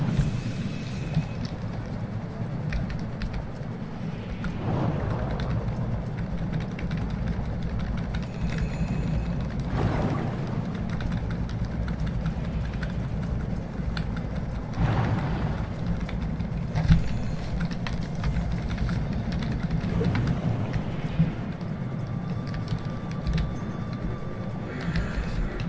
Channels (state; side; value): identical; both; correlation 1.00